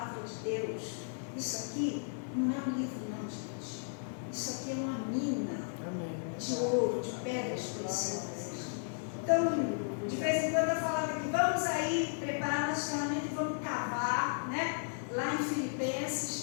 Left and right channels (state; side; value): silent; right; digital silence